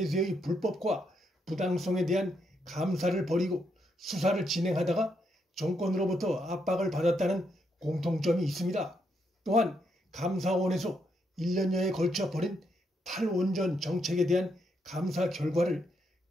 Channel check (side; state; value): both; normal; correlation 0.78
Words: 불법과 부당성에 대한 감사를 벌이고 수사를 진행하다가 정권으로부터 압박을 받았다는 공통점이 있습니다. 또한 감사원에서 1년여에 걸쳐 벌인 탈원전 정책에 대한 감사 결과를